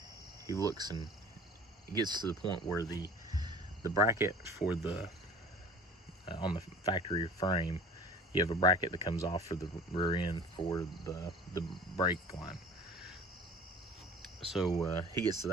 looks and it gets to the point where the bracket for the on the factory frame, you have a bracket that comes off for the rear end for the brake line. So he gets to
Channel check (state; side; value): normal; both; correlation 0.43